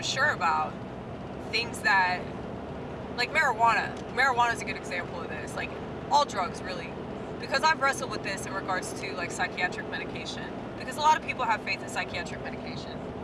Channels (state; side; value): identical; both; correlation 1.00